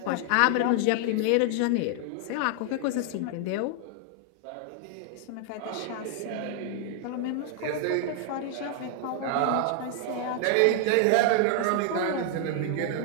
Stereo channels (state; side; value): different; both; correlation 0.00